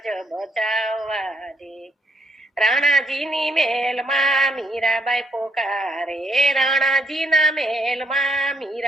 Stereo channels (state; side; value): normal; both; correlation 0.74